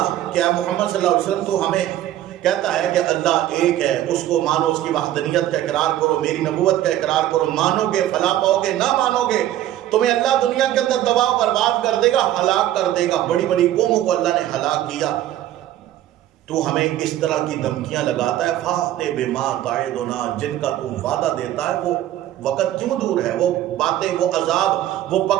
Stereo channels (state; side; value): quieter; left; 13.1 dB